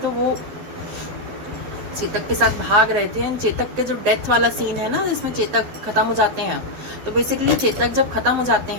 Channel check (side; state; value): left; late; 12 ms